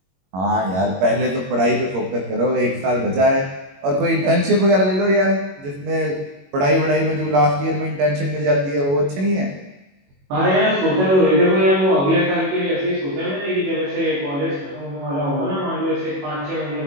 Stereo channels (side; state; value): left; late; 21 ms